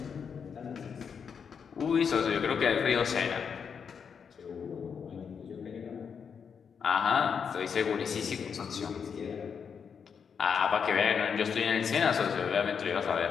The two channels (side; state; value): right; quieter; 6.7 dB